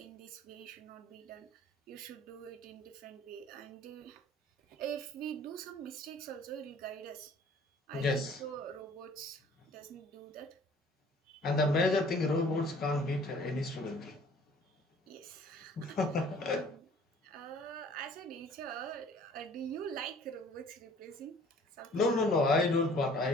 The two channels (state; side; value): normal; both; correlation 0.53